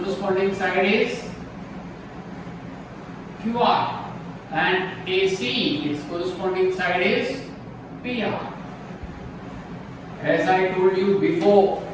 side is QR, and AC, its corresponding side is PR. As I told you before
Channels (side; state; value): both; identical; correlation 1.00